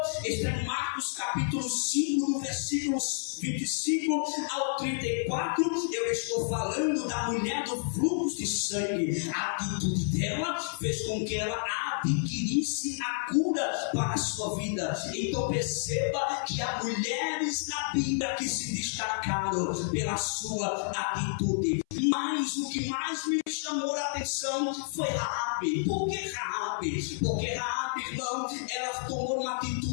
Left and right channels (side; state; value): right; silent; 58 dB below the other